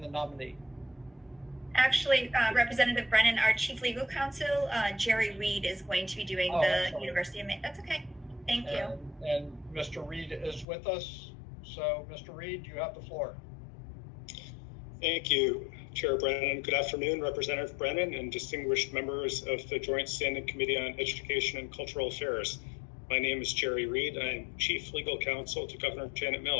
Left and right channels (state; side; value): drops out; right; at 10.7 s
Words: nominee. Actually, Representative Brennan, our chief legal counsel, Jerry Reed, is going to be doing the University of Maine. That's okay. Thank you. And Mr. Reed is with us. So, Mr. Reed, you have the floor. Thank you, Chair Brennan. Good afternoon, Representative Brennan and distinguished members of the Joint Standing Committee on Education and Cultural Affairs. My name is Jerry Reed. I am Chief Legal Counsel to Governor Janet